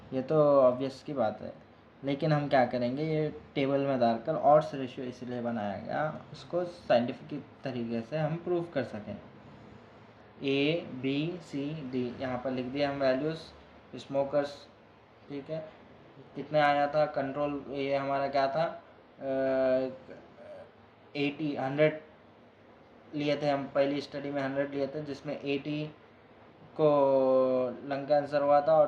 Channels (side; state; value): both; identical; correlation 1.00